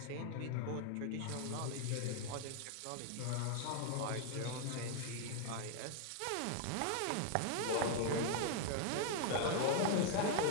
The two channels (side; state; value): both; different; correlation 0.00